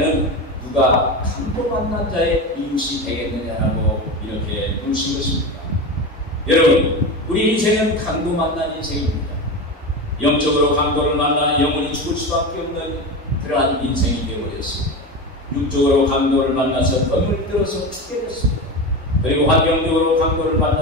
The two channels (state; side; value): normal; both; correlation 0.23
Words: 누가 강도 만난 자의 이웃이 되겠느냐라고 이렇게 물으신 것입니다. 여러분, 우리 인생은 강도 만난 인생입니다. 영적으로 강도를 만나 영원히 죽을 수밖에 없는 그러한 인생이 되어버렸습니다. 육적으로 강도를 만나서 덤을 들어서 죽게 됐습니다. 그리고 환경적으로 강도를